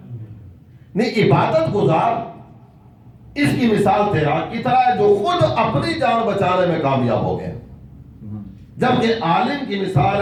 نہیں، عبادت گزار اس کی مثال تیراک کی طرح ہے جو خود اپنی جان بچانے میں کامیاب ہو گیا، جبکہ عالم کی مثال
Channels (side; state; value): both; identical; correlation 1.00